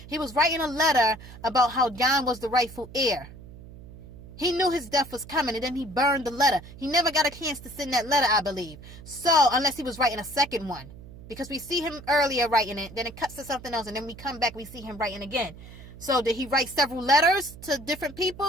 He was writing a letter about how Jon was the rightful heir. He knew his death was coming, and then he burned the letter. He never got a chance to send that letter, I believe. So, unless he was writing a second one. Because we see him earlier writing it, then it cuts to something else, and then we come back, we see him writing again. So, did he write several letters to different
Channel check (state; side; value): noise; right; hum, 17 dB below the sound